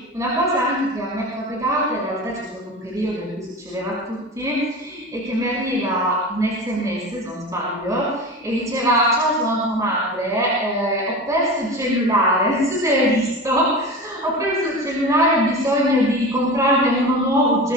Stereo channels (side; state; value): both; normal; correlation 0.30